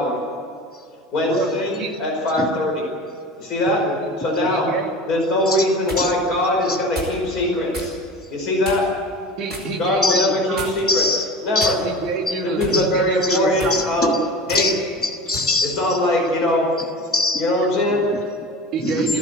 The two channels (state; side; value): normal; both; correlation 0.34